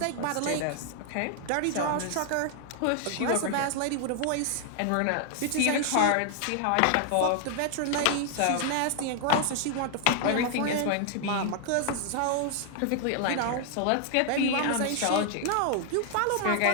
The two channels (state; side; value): different; both; correlation 0.00